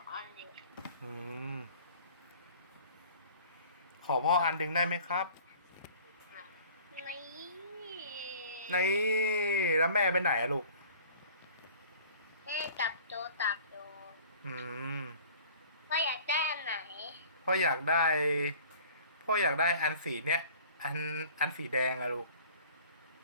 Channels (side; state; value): both; inverted; correlation -0.48